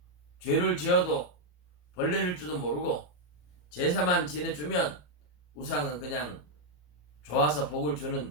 죄를 지어도 벌레를 줄도 모르고 제사만 지내주면 우상은 그냥 좋아서 복을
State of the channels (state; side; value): late; right; 34 ms